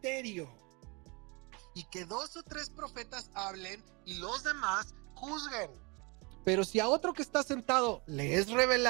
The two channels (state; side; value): quieter; left; 28.9 dB